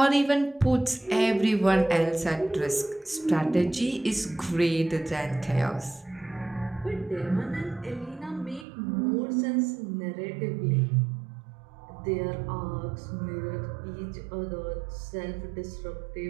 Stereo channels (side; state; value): left; drops out; at 8.7 s